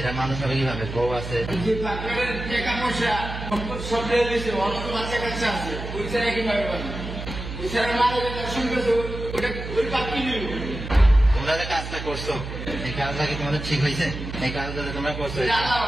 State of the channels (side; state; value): right; noise; hum, 8 dB below the sound